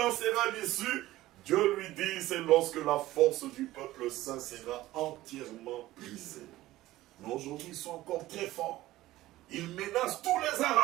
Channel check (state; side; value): quieter; left; 16.3 dB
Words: sera l'issue? Dieu lui dit, c'est lorsque la force du peuple saint sera entièrement brisée. Mais aujourd'hui, ils sont encore très forts. Ils menacent tous les